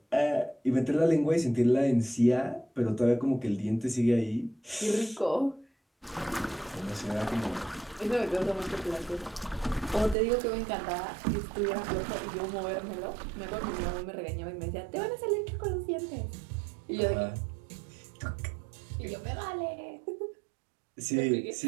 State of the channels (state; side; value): drops out; left; at 10.2 s